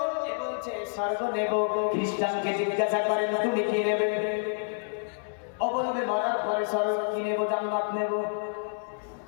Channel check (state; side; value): silent; right; digital silence